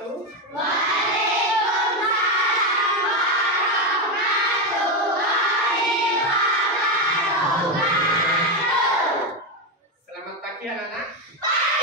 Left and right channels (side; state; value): both; normal; correlation 0.10